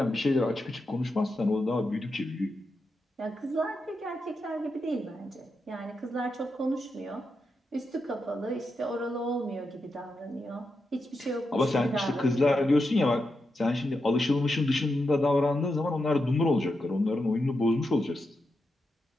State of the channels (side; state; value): both; normal; correlation 0.86